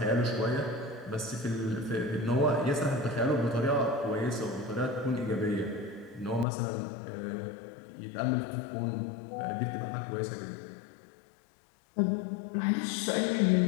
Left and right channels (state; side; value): drops out; right; at 6.5 s